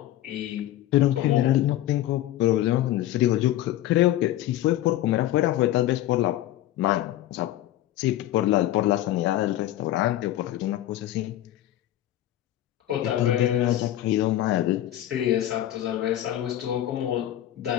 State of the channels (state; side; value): quieter; right; 13.6 dB